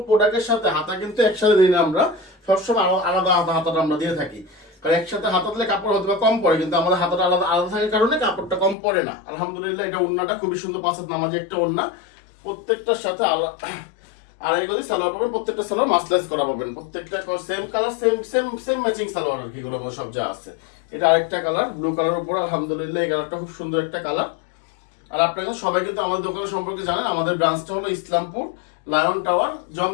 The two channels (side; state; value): right; drops out; at 8.8 s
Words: প্রোডাক্টের সাথে হাতা কিন্তু একসাথে দিই না আমরা, সবসময় আলাদা হাতাটা আমরা দিয়ে থাকি। কারণ একসাথে হাতা দিলে কাপড় হয়তো কম পড়ে, কিন্তু আমাদের হাতাটা আলাদা আলাদা থাকার কারণে কাপড়টা কম পড়ে না। আলহামদুলিল্লাহ এটা ওড়নাটা খুবই সুন্দর, 5 হাত নামাজি একটা ওড়না। প্রত্যেকটার সাথে আড়াই গজি সালোয়ার পাবেন। প্রত্যেকটা সালোয়ার মাসলেস করা পাবেন। প্রত্যেকটা same colour, same same same matching salwar আর কি, গুলো সব যা আছে। এটা আরেকটা কালার, ব্লু কালার উপর আলহামদুলিল্লাহ এই কালারটা খুব সুন্দর একটা কালার। আর আপনারা সবাই কিন্তু আমাদের দোকানের সম্পর্কে জানেন। আমাদের ব্রাঞ্চটা হলো ইসলামপুর লায়ন টাওয়ার